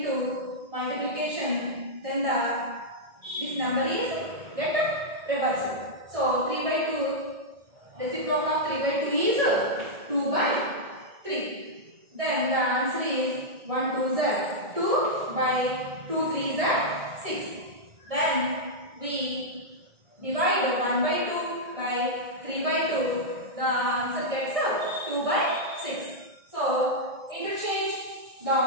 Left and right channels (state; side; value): late; left; 1.6 ms